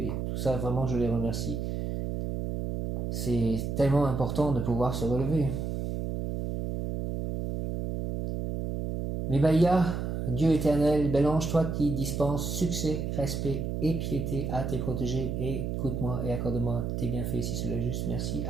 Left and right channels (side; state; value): right; noise; hum, 3 dB below the sound